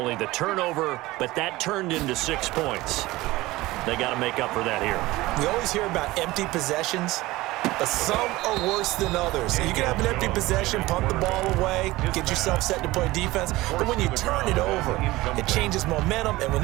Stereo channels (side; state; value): left; quieter; 19.0 dB